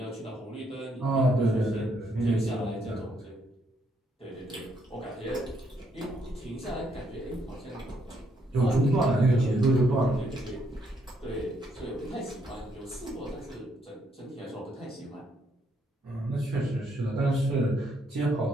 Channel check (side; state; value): both; normal; correlation 0.73